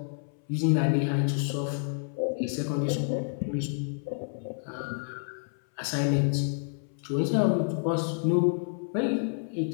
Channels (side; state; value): right; silent; 59 dB below the other